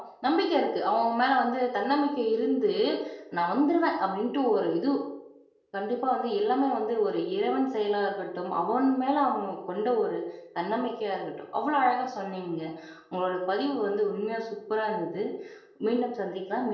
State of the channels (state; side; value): identical; both; correlation 1.00